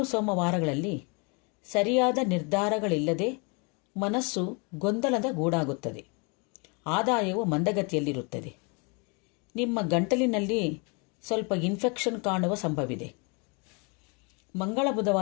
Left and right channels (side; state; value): right; quieter; 32.4 dB